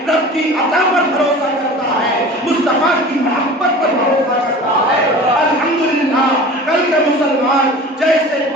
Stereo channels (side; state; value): both; normal; correlation 0.39